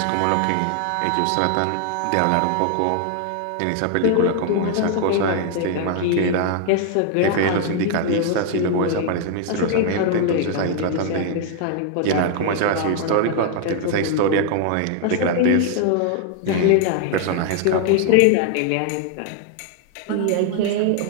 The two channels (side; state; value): both; different; correlation 0.00